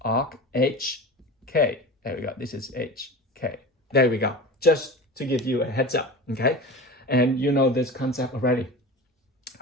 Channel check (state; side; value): normal; both; correlation 0.31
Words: arc HK. There we go. This is HK. There we go. Just to give you a heads up, okay? And you know this concept already.